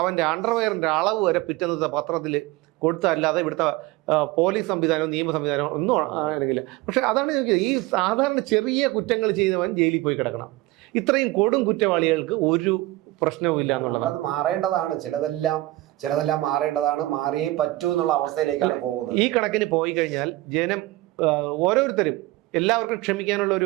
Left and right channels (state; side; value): quieter; left; 18.6 dB